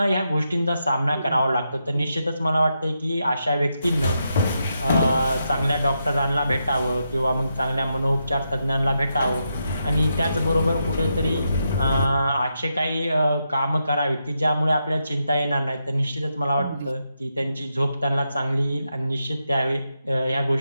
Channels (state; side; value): inverted; both; correlation -0.84